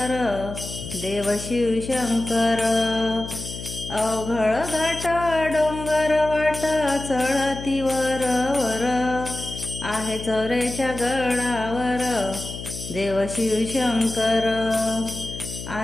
देव शिवशंकर. अवघड घाट डोंगर वाट चढती वर वर, आहे चौऱ्याच्या गडावर देव शिवशंकर,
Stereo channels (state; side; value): noise; left; hum, 10 dB below the sound